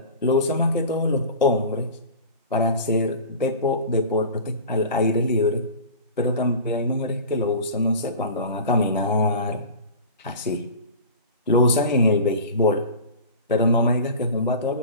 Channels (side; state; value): both; inverted; correlation -0.36